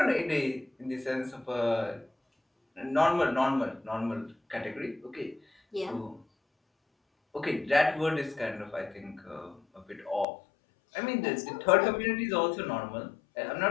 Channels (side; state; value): right; drops out; at 10.2 s